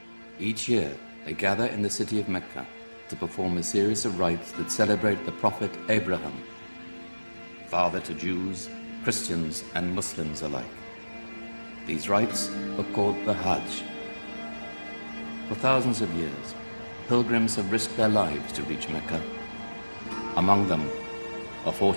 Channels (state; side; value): inverted; both; correlation -1.00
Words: Each year, they gather in the city of Mecca to perform a series of rites that celebrate the Prophet Abraham, father to Jews, Christians, and Muslims alike. These rites are called the Hajj. For thousands of years, pilgrims have risked their lives to reach Mecca. Among them, a